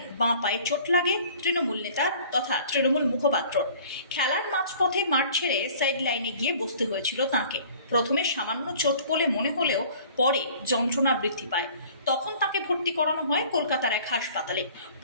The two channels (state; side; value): inverted; both; correlation -0.50